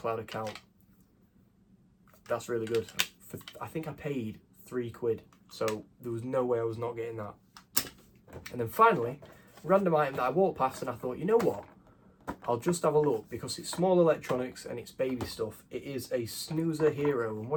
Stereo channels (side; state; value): both; identical; correlation 1.00